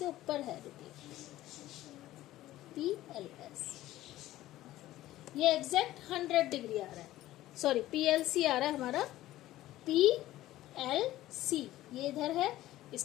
ऊपर है। रुकिए, पी एल एस ये एग्जैक्ट 100 डिग्री आ रहा है। सॉरी, पी एल सी आ रहा है हमारा। पी एल सी ये इधर है,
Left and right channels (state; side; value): quieter; right; 15.2 dB